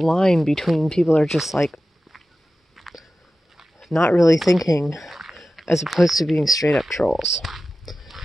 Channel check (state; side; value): normal; both; correlation 0.94